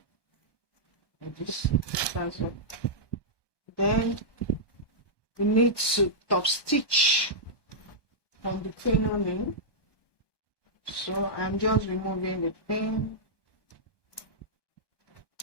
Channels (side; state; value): right; late; 1.2 ms